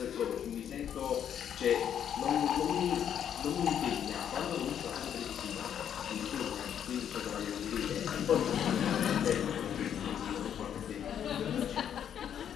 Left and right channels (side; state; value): right; quieter; 9.2 dB